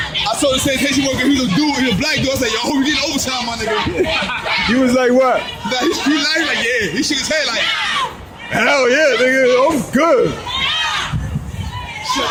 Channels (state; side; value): identical; both; correlation 1.00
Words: told the sanitation worker he was a dude, he was a black dude. I said, yo, we getting overtime, my nigga. He was like, what? Nah, he like, yeah. He shook his head like, Hell yeah, nigga, I'm good.